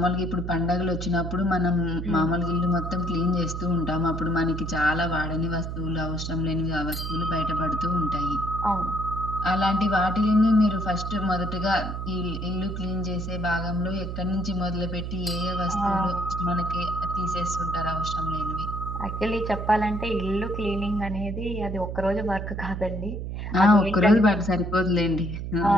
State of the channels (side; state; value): right; noise; hum, 5 dB below the sound